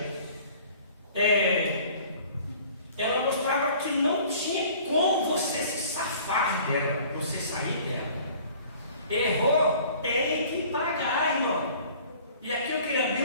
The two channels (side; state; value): both; inverted; correlation -0.50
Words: ela mostrava que não tinha como você se safar dela, você sair dela. Errou, tem que pagar, irmão. E aqui eu queria abrir